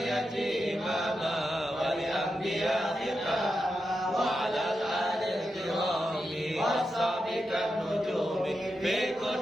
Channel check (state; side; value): normal; both; correlation 0.88